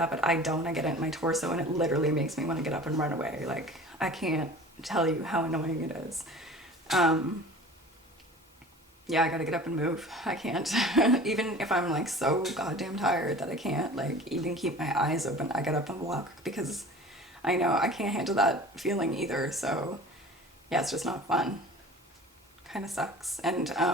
but I don't. I get it in my torso, and it literally makes me want to get up and run away. Like, I can't tell you how annoying it is. Yeah, I gotta get up and move. I can't. Even if I'm like so goddamn tired that I can't like even keep my eyes open, I get up and walk, because I know I can't handle that feeling either. So yeah, it's just not fun. Kind of sucks. And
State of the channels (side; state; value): both; normal; correlation 0.42